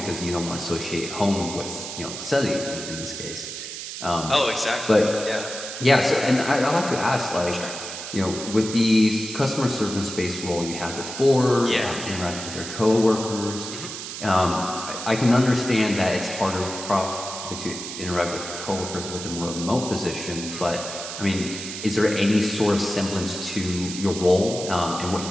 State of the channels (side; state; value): right; noise; hiss, 8 dB below the sound